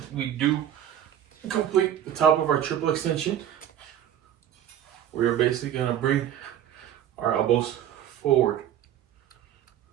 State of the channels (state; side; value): quieter; left; 10.6 dB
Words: we do complete the top of our triple extension, we are basically gonna bring our elbows forward